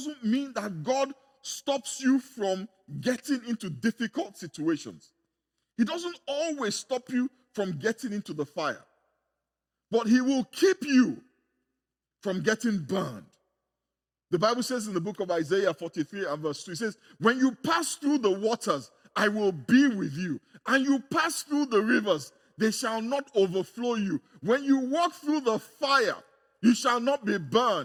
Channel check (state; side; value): identical; both; correlation 1.00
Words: mean that God stops you from getting into difficult situations. He doesn't always stop you from getting into the fire, but he will keep you from getting burned. The Bible says in the book of Isaiah 43 and verse 2, it says, when you pass through the waters, I will be with you. And you pass through the rivers, they shall not overflow you. When you walk through the fire, you shall not be